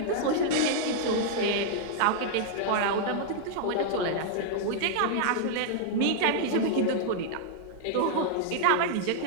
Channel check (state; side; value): different; both; correlation -0.01